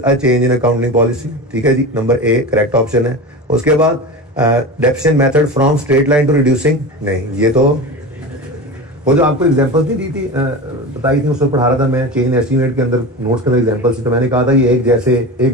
a change in accounting policy, ठीक है जी, नंबर ए करेक्ट ऑप्शन है। उसके बाद deficient method from straight line to reducing, नहीं ये तो वो जो आपको एग्जांपल्स नहीं दी थी बताई थी उसमें पढ़ा रहा था मैं, चेंज इन एस्टीमेट के अंदर नोट्स के अंदर एग्जांपल्स थी, तो मैंने कहा था ये एक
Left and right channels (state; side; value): normal; both; correlation 0.27